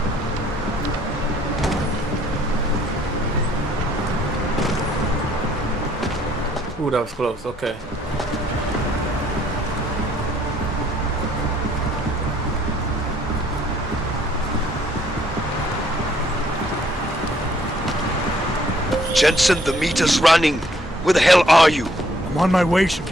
Ooh, that was close. Okay. Jensen, the meter's running. Where the hell are you? I'm on my way,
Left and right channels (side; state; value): both; normal; correlation 0.64